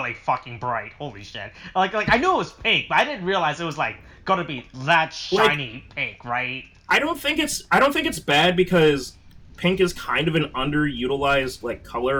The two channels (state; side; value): identical; both; correlation 1.00